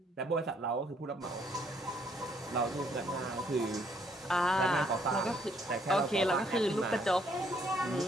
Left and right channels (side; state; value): both; normal; correlation 0.67